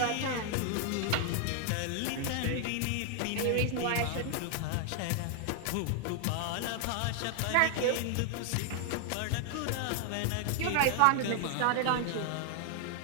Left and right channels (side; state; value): both; different; correlation 0.00